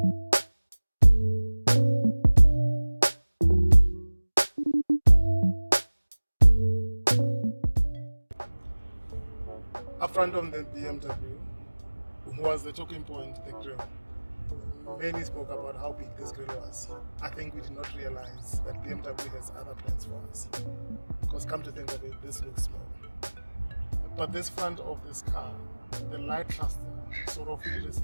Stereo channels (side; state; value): both; inverted; correlation -1.00